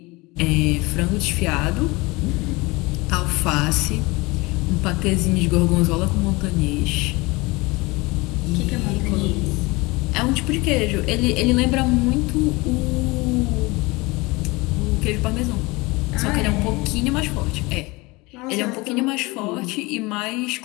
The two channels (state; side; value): quieter; right; 23.8 dB